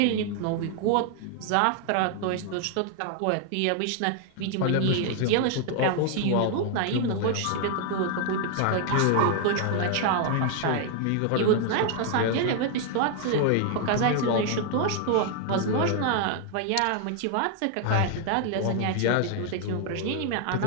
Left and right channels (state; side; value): different; both; correlation 0.00